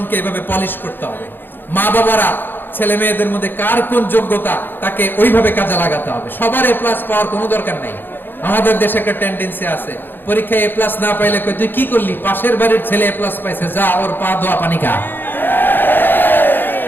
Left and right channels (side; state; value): right; late; 0.097 ms